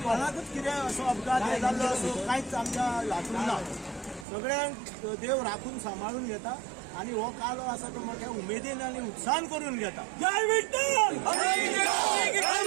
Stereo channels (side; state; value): left; drops out; at 4.2 s